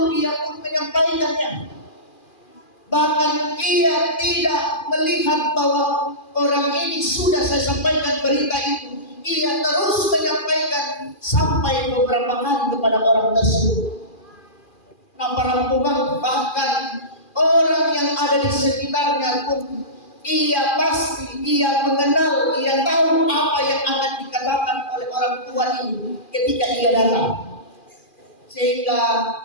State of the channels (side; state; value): right; late; 2.4 ms